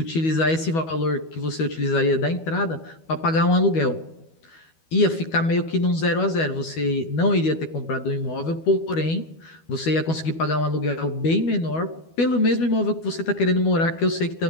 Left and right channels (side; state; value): right; late; 12 ms